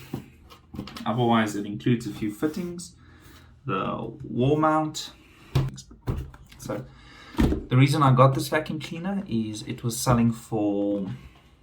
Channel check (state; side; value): identical; both; correlation 1.00